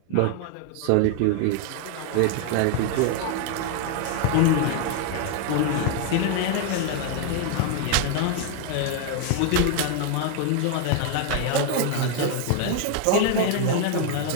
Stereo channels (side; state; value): both; different; correlation 0.00